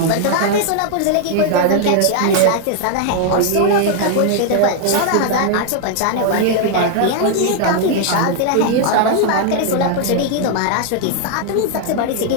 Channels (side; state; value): both; different; correlation 0.00